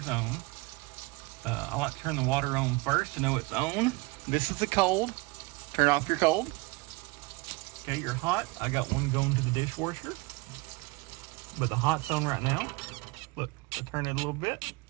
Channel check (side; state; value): left; quieter; 24.9 dB